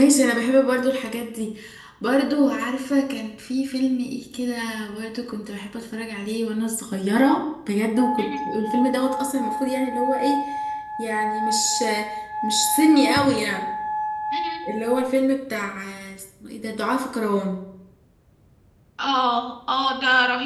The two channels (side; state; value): both; identical; correlation 1.00